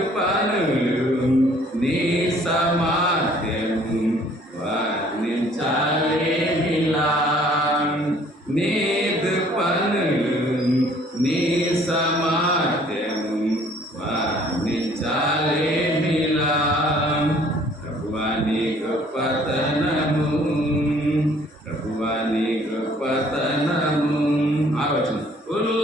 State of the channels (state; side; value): normal; both; correlation 0.58